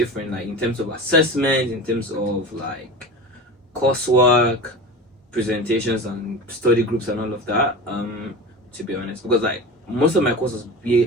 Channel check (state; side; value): normal; both; correlation 0.30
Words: in terms of assessment, in terms of coursework, presentations and study groups and all of that, to be honest, because most of my courses